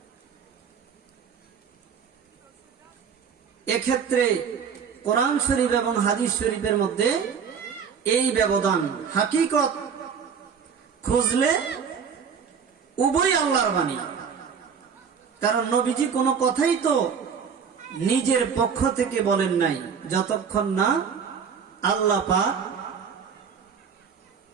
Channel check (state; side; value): quieter; left; 6.7 dB